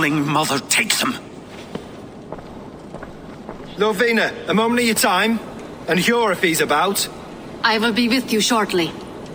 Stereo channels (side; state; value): both; identical; correlation 1.00